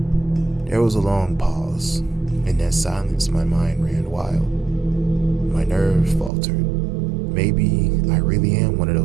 There was a long pause. In that silence, my mind ran wild. My nerves faltered. Maybe I really am one of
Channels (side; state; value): left; drops out; at 6.3 s